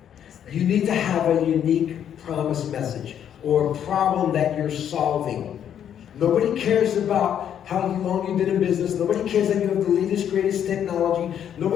You need to have a unique promise message or a problem that you're solving. Nobody cares about how long you've been in business. Nobody cares that you have the latest, greatest technology.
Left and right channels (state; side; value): quieter; right; 9.4 dB